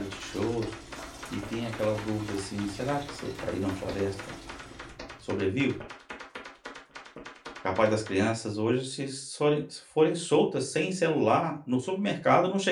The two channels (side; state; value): both; identical; correlation 1.00